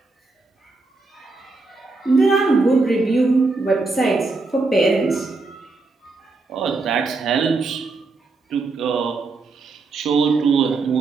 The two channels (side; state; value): left; quieter; 3.7 dB